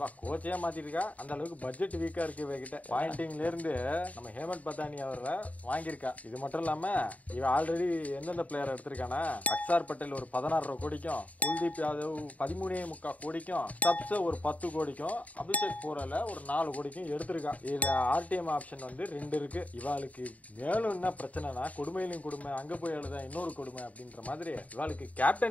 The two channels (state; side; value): late; right; 0.070 ms